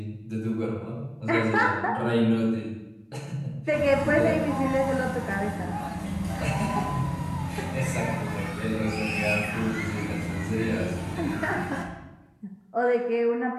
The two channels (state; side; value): identical; both; correlation 1.00